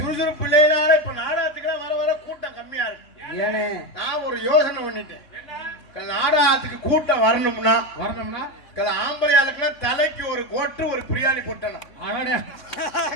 இல்லைனால இப்ப நாடகத்துக்கு வர வர கூட்டம் கம்மியா இருக்கு. நான் ஒரு யோசனை பண்ணிட்டேன், நாடகத்துக்கு கூட்டம் வரணும்னா ஆம்பளை ஆளுக்குலாம் தலைக்கு ஒரு கோட்டு ஒரு பிரியாணி போட்டணும்,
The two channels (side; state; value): right; late; 3.5 ms